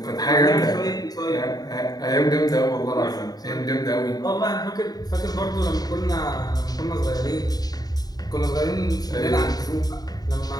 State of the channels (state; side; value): late; right; 0.18 ms